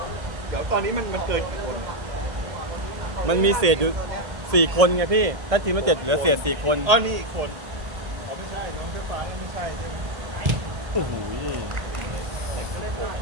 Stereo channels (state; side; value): late; left; 1.8 ms